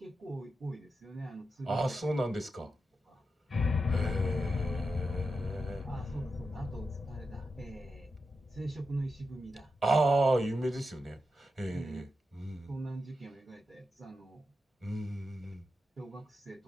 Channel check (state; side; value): normal; both; correlation 0.89